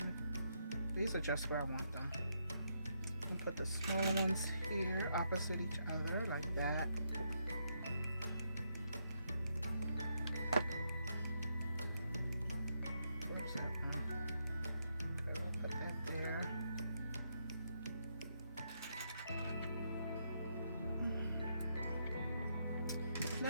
these are just where I want them. I'll put the small ones here opposite each other like that. Where's that one? Okay, I'll put that there.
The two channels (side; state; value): both; inverted; correlation -0.79